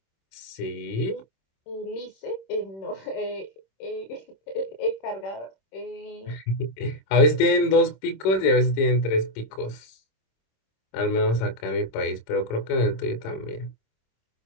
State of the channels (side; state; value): right; late; 26 ms